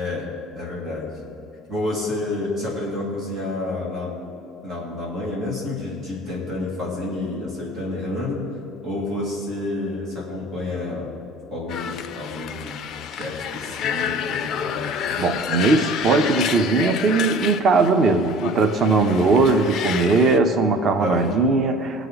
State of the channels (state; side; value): normal; both; correlation 0.45